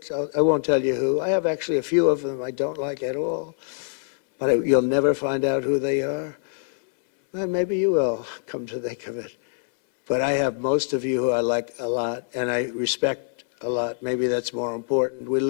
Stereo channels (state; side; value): silent; right; 62 dB below the other